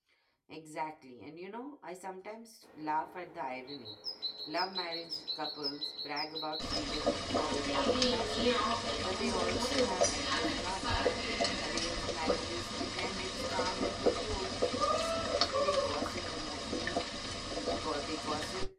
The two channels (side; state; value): both; identical; correlation 1.00